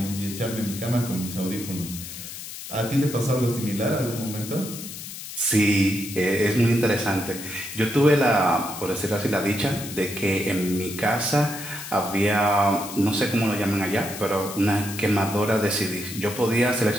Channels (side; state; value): left; noise; hiss, 10 dB below the sound